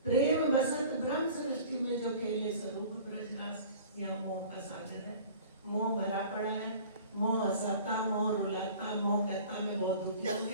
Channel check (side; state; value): both; inverted; correlation -0.44